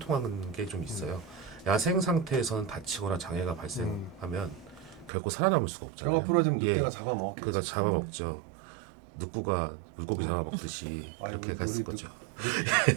게 좀 있어요. 야생 상태에서는 다치거나 장애가 발생하면 결코 살아남을 수가 없잖아요. 뼈가 부러지면 예, 늑대가 잡아먹었겠지. 그가 잡아먹죠. 늑구가 물고기 잡아먹듯이 아이고, 이렇게 갔을 우리 거죠.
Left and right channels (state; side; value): drops out; left; at 5.1 s